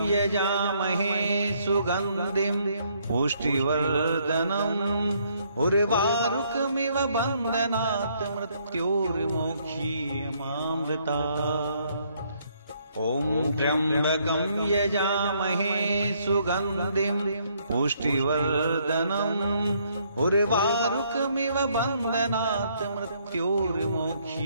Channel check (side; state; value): both; inverted; correlation -0.69